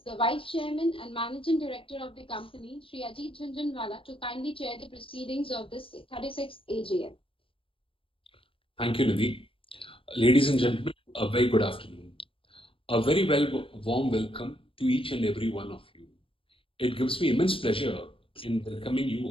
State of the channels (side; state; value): right; late; 0.26 ms